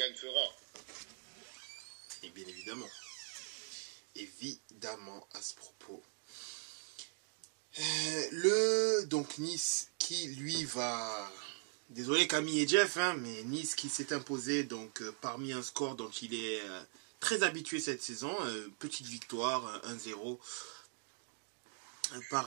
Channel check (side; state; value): left; silent; 51 dB below the other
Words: fera. Et bien évidemment. Évidemment à ce propos. Donc Nice qui lui va... Désolé Camille et Jeff, mais Nice qui s'est imposé donc parmi un score dont il est très habitué cette saison. Petite victoire, 1-0.